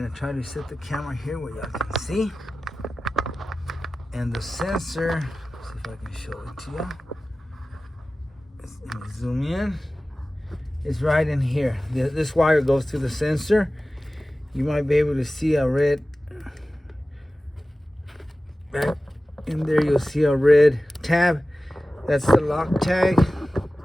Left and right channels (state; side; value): normal; both; correlation 0.96